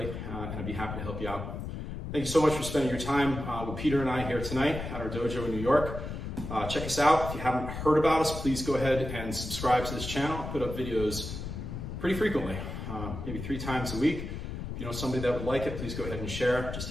and I'd be happy to help you out. Thank you so much for spending your time with Peter and I here tonight at our dojo in New York. Check us out. If you haven't heard about us, please go ahead and subscribe to this channel. I put up videos pretty frequently, maybe 3 times a week. If you know somebody that would like it, please go ahead and share. It just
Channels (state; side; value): noise; left; rumble, 6 dB below the sound